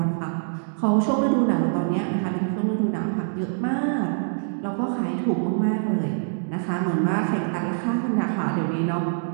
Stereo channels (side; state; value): left; silent; digital silence